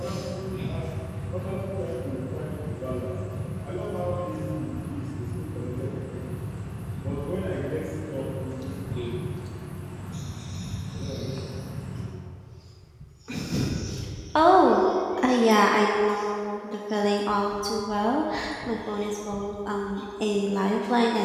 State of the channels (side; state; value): both; identical; correlation 1.00